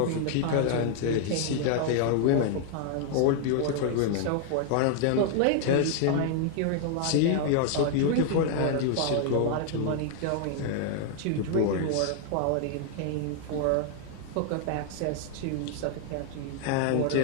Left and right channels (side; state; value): both; different; correlation 0.00